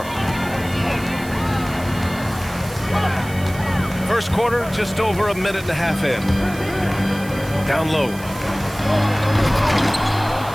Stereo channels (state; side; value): noise; right; hiss, 17 dB below the sound